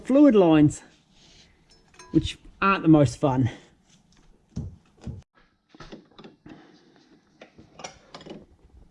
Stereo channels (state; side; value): identical; both; correlation 1.00